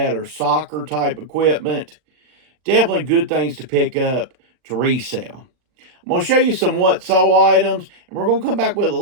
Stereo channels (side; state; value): left; late; 40 ms